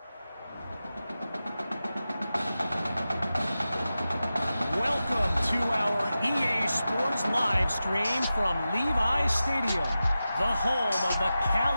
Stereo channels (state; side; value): inverted; both; correlation -0.93